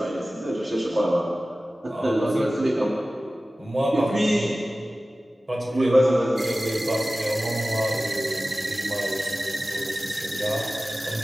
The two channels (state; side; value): normal; both; correlation 0.96